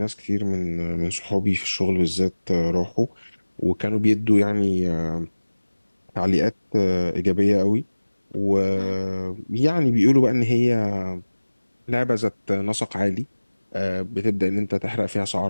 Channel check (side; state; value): both; inverted; correlation -1.00